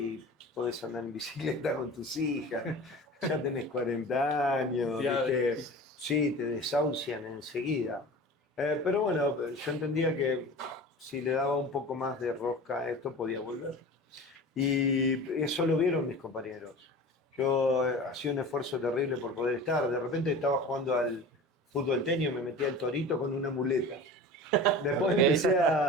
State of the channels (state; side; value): normal; both; correlation 0.36